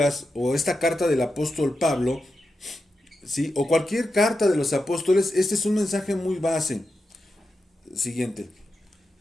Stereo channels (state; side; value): normal; both; correlation 0.89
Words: o esta carta del apóstol Pablo, ¿sí? O cualquier carta de los apóstoles, este es un mensaje muy base. Siguiente.